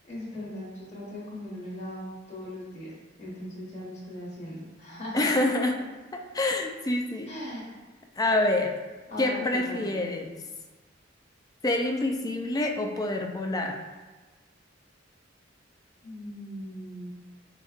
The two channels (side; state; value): both; normal; correlation 0.42